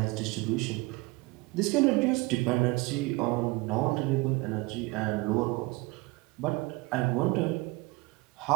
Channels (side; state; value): left; quieter; 23.4 dB